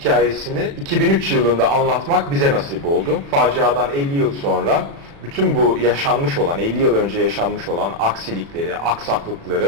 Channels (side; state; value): left; late; 36 ms